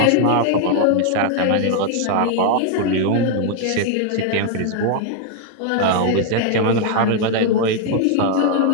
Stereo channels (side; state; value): both; different; correlation 0.00